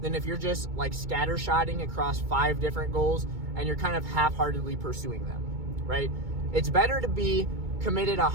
than if you're just like scattershotting across 5 different goals and you're kind of half-heartedly pursuing them, right? It's better to be committed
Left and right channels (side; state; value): left; late; 2.2 ms